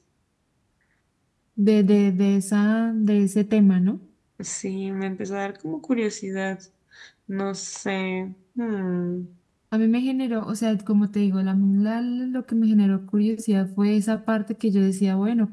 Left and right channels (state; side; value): identical; both; correlation 1.00